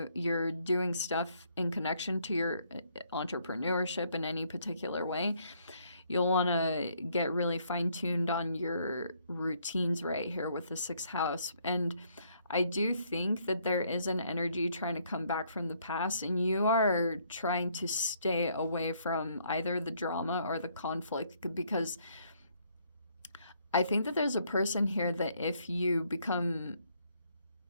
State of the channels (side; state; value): both; inverted; correlation -0.68